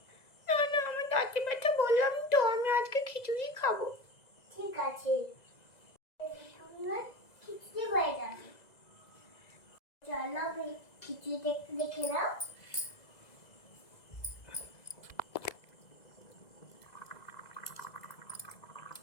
না না, আমার দাঁতে ব্যথা, বললাম তো আমি আজকে খিচুড়ি খাবো। ঠিক আছে, আমরা খিচুড়ি হয়ে যাবে। চলো আমি খিচুড়িটা একটু দেখে নাও।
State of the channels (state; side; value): late; right; 2.0 ms